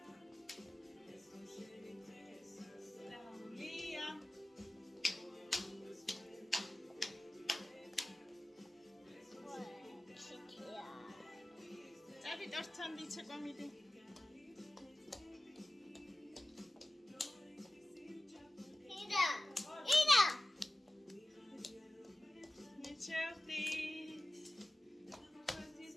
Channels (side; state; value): both; normal; correlation 0.95